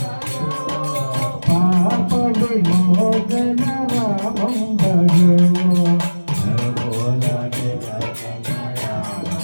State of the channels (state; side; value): inverted; both; correlation -1.00